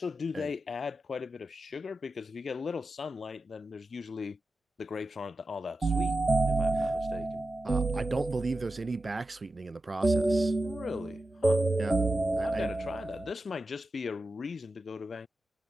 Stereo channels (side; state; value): both; normal; correlation 0.91